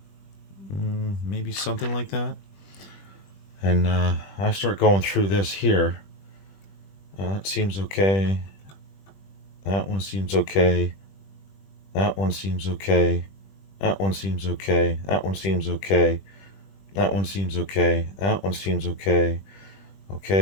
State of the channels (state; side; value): late; right; 20 ms